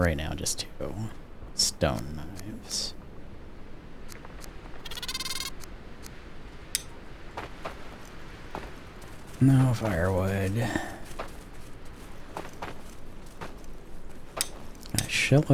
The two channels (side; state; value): both; identical; correlation 1.00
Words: now, just 2 stone knives. No firewood. Got a